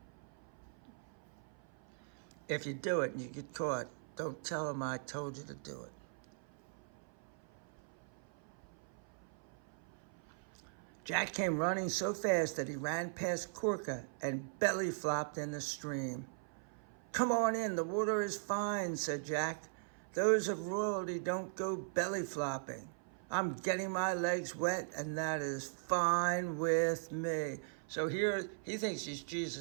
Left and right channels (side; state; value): left; silent; 51 dB below the other